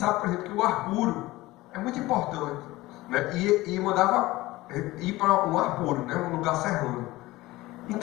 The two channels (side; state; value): right; quieter; 18.8 dB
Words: por exemplo, que o ar puro é muito importante, né? E mandava ir para um ar puro, né? Um lugar serrano.